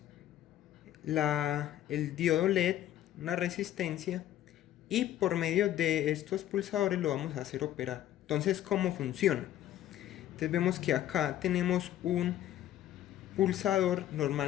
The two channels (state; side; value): quieter; right; 12.5 dB